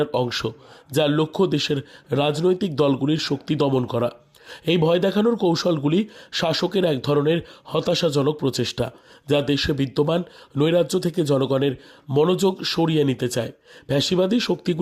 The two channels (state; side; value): identical; both; correlation 1.00